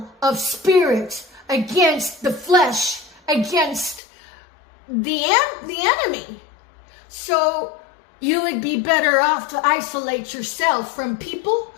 of spirit against the flesh, against the enemy. So you would be better off to isolate yourself from people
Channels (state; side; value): drops out; right; at 4.0 s